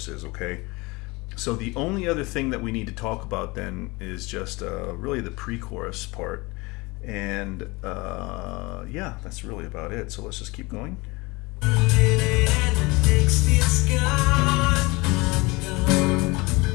okay? So the only other thing that we need to talk about then is just really the pre-chorus part, and yeah, that's really about it. So let's just keep going. All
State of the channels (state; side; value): quieter; right; 24.3 dB